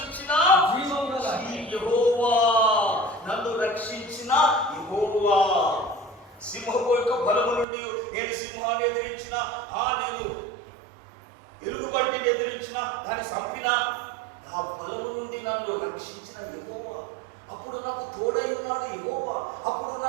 యెహోవా, నన్ను రక్షించిన యెహోవా. సింహం యొక్క బలము నుండి నేను సింహాన్ని ఎదిరించిన, నేను ఎలుగుబంటిని ఎదిరించిన, దాన్ని చంపిన, ఆ బలము నుండి నన్ను రక్షించిన యెహోవా. అప్పుడు నాకు తోడై ఉన్నాడు యెహోవా, అప్పుడు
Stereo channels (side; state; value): left; drops out; at 7.7 s